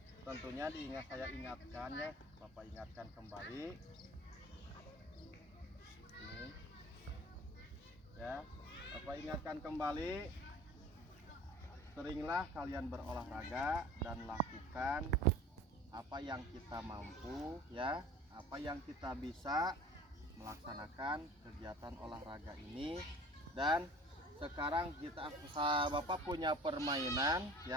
tentunya saya ingatkan ya, Bapak ingatkan kembali. Ini. Ya, Bapak ingatkan kembali, seringlah kalian berolahraga dan lakukan apa yang kita mampu ya, apa yang kita bisa melaksanakan kegiatan olahraga ini. Dan sekarang Bapak punya permainan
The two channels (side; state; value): both; normal; correlation 0.43